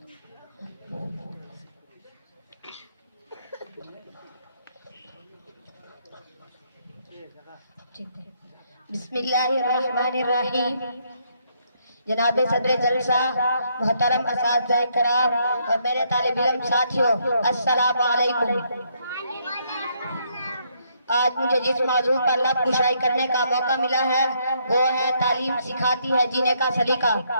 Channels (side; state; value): both; inverted; correlation -0.72